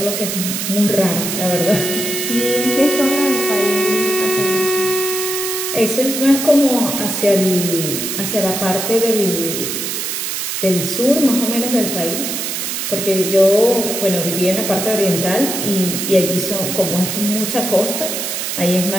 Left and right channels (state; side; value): noise; right; hiss, 3 dB below the sound